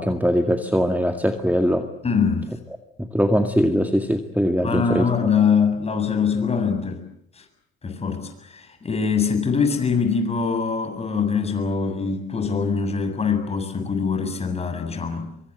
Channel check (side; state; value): right; quieter; 3.1 dB